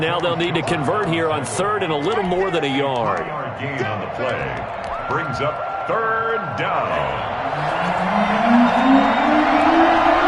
they'll need to convert here on 3rd and a little more than a yard. Gain on the play brings up 3rd down.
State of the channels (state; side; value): identical; both; correlation 1.00